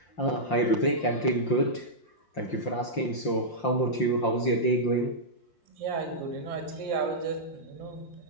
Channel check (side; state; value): right; late; 5.7 ms